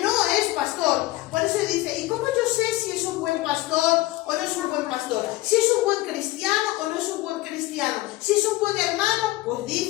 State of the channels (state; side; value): quieter; right; 18.5 dB